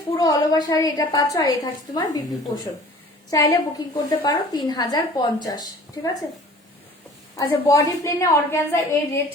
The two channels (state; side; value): normal; both; correlation 0.47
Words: পুরো অল ওভার শাড়ি এটা পাচ্ছ, আর এই থাকছে তোমার বিপি পোর্শন। চাইলে বুকিং করতে পারো 3050, ঠিক আছে। আচ্ছা বডি প্লেনে অর্গানজা এই রেড